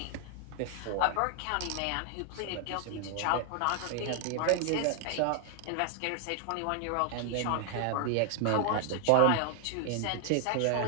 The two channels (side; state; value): both; different; correlation 0.00